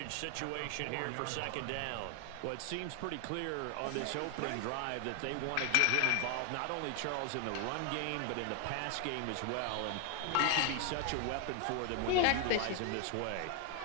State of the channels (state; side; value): different; both; correlation 0.00